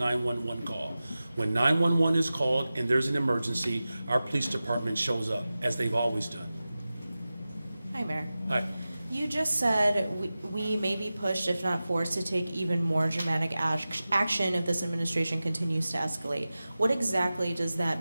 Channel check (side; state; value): both; inverted; correlation -0.95